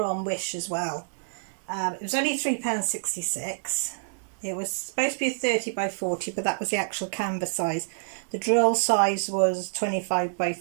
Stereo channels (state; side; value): silent; left; digital silence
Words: on Wish as well. It was only £3.66. It was supposed to be a 30 by 40, but that was the actual canvas size. The drill size was 25 by